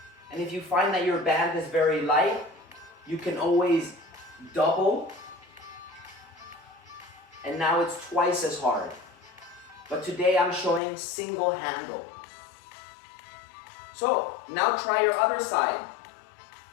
And if you find that your band is very light, you can always double. And now it's twice as hard. But today I'm showing single handle. So now try your other side.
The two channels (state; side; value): drops out; right; at 10.8 s